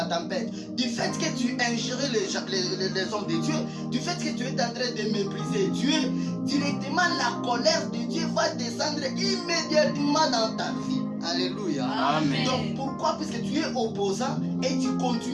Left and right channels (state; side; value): identical; both; correlation 1.00